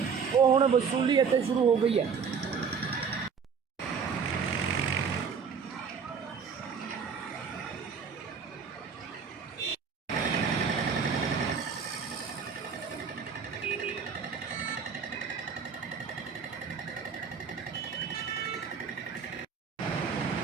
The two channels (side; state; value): left; quieter; 6.2 dB